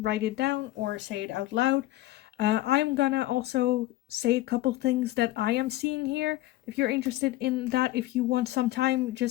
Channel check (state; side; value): quieter; right; 16.3 dB